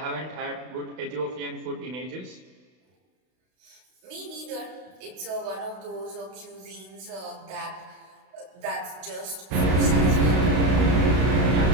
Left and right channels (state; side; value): late; left; 32 ms